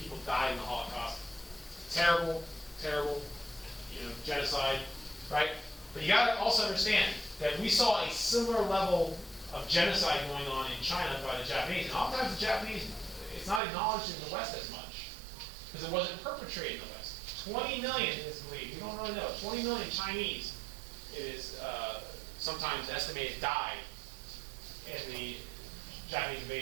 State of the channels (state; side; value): drops out; left; at 13.6 s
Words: died in the Holocaust. Terrible, genocide, right? But you got to also understand that we saw a similar level of genocide going on in China by the Japanese. And oftentimes the Japanese, it's not acknowledged in the West as much, because it wasn't perpetrated in the West. 20 million is believed, we don't really know, 20 million Chinese, it is sometimes estimated, died in the Japanese